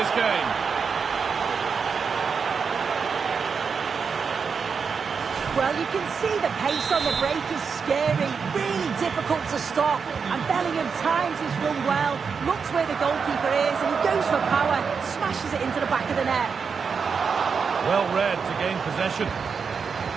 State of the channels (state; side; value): quieter; left; 5.8 dB